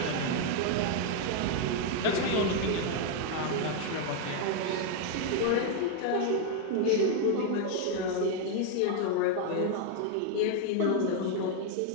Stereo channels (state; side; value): different; both; correlation 0.01